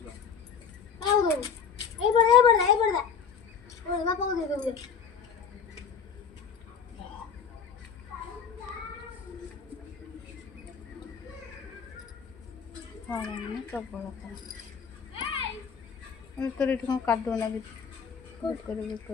ତୋର ଏଠି କଣ କାଦୁଅ ଲାଗିଛି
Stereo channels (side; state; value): right; quieter; 6.7 dB